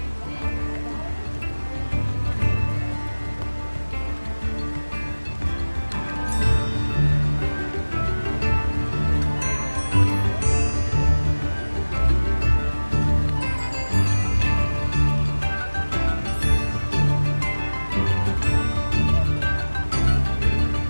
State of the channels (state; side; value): inverted; both; correlation -1.00